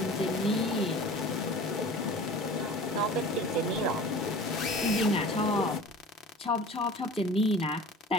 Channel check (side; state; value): both; normal; correlation 0.40